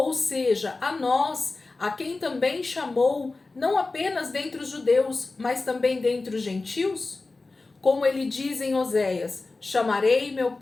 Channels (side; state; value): right; quieter; 3.5 dB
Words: seja, a nós, a quem também chamou, não apenas dentre os judeus, mas também dentre os gentios? Como ele diz em Oséias: chamarei meu